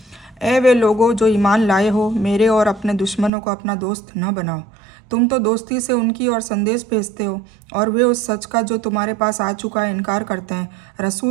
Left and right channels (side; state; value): left; drops out; at 3.3 s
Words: ए वे लोगो जो ईमान लाए हो, मेरे और अपने दुश्मनों को अपना दोस्त न बनाओ। तुम तो दोस्ती से उनकी और संदेश भेजते हो और वे उस सच का जो तुम्हारे पास आ चुका है इनकार करते हैं।